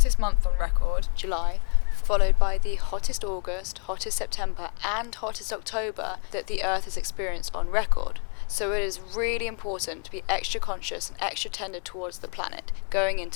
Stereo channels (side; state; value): right; quieter; 38.2 dB